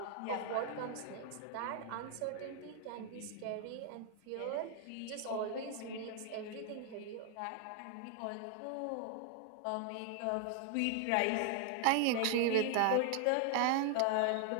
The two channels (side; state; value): both; different; correlation 0.00